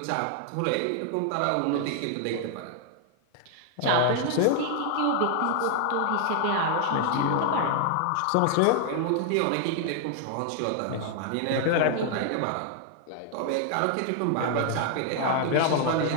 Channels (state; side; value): different; both; correlation 0.00